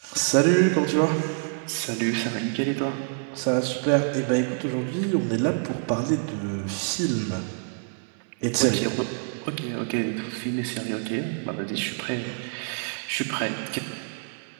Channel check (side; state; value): left; silent; 61 dB below the other